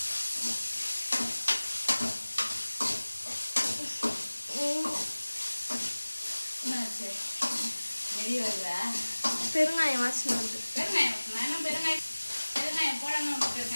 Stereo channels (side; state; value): both; inverted; correlation -1.00